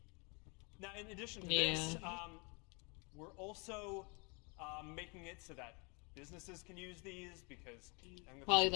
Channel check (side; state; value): right; quieter; 32.0 dB